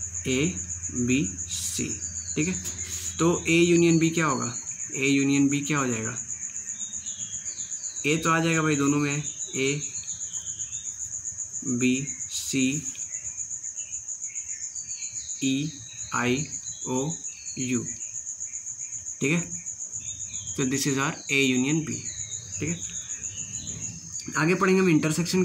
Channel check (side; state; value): both; identical; correlation 1.00